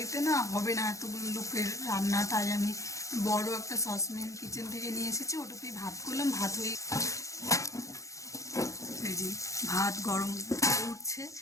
না হবে না এতগুলো লোকের রান্না, তাই আমি বড় একটা সসপ্যান কিচেন থেকে নিয়ে এসেছি, ওটাতেই ভাত করলাম। ভাত হয়ে এই যে ভাত গরম উঠছে।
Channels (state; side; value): late; right; 0.15 ms